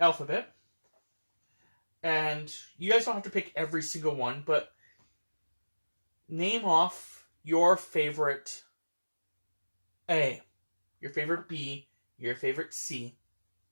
and you guys don't have to pick every single one, but name off your favorite A, your favorite B, your favorite C.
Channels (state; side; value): inverted; both; correlation -1.00